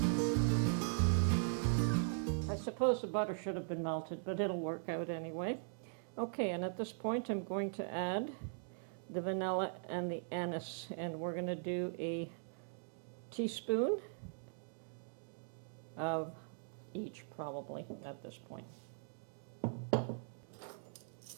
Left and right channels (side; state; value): left; silent; digital silence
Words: I suppose the butter should have been melted, but it'll work out anyway. Okay, and at this point I'm going to add the vanilla and the anise, and we're going to do a teaspoon of each probably at this point.